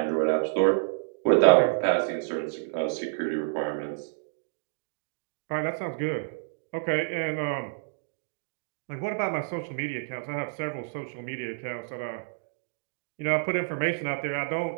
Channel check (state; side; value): silent; left; digital silence